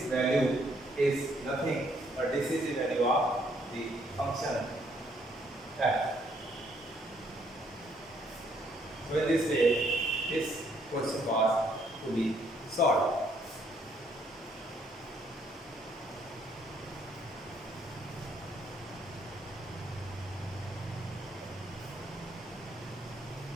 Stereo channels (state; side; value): normal; both; correlation 0.68